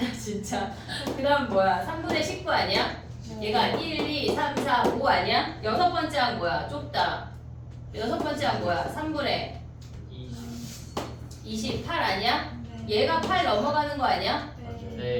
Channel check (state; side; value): identical; both; correlation 1.00